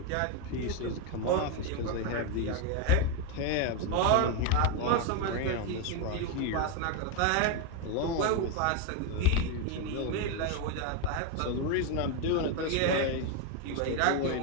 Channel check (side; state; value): both; different; correlation 0.02